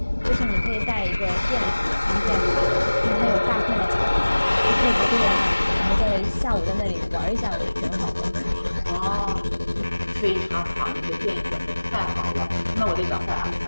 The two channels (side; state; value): both; inverted; correlation -1.00